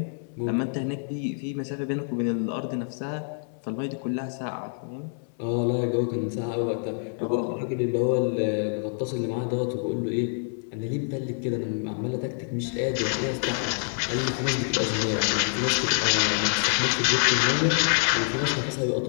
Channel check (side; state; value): right; silent; 59 dB below the other